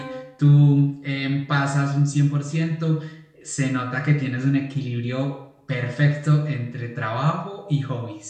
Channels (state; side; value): identical; both; correlation 1.00